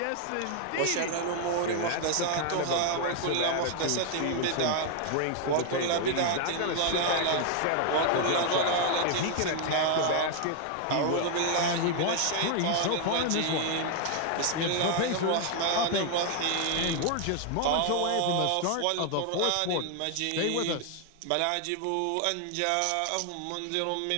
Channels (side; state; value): both; different; correlation 0.00